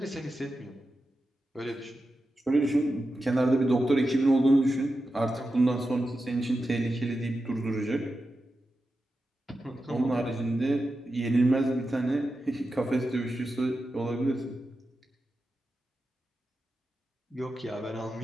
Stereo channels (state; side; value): normal; both; correlation 0.91